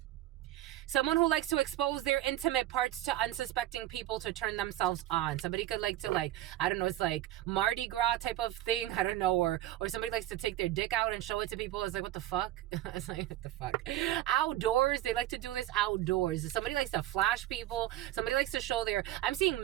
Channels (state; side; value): quieter; left; 14.2 dB